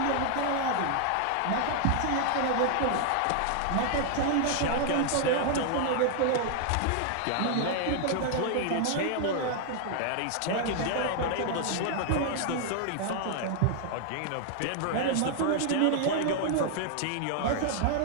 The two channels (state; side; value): different; both; correlation 0.00